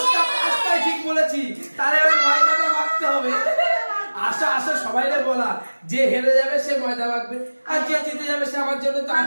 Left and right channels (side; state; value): both; inverted; correlation -1.00